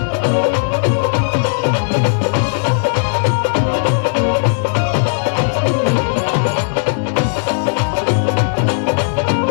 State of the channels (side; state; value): right; silent; digital silence